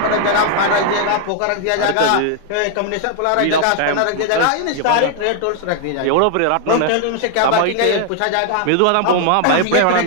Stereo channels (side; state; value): both; different; correlation 0.00